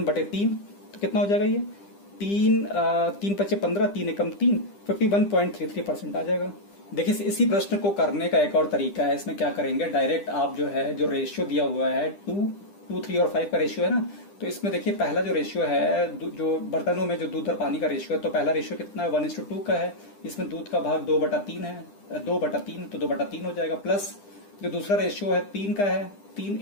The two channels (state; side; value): late; right; 10 ms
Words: तो कितना हो जाएगा ये, 3 5 15, 3 एकम 3, 51.33% आ जाएगा। देखिए इसी प्रश्न को करने का एक और तरीका है, इसमें क्या करेंगे, डायरेक्ट आप जो है, जो रेशियो दिया हुआ है 2, 3 और 5 का रेशियो है ना, तो इसमें देखिए पहला जो रेशियो है, जो बर्तनों में जो दूध और पानी का रेशियो है, तो पहला रेशियो कितना है, 1:2 का है, इसमें दूध का भाग 2/3 है, 2/3, तो 2/3 हो जाएगा, प्लस जो दूसरा रेशियो है 3 का है, 3